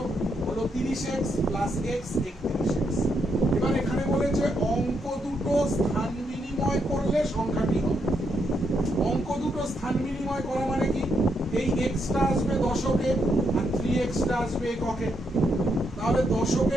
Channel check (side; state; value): both; normal; correlation 0.79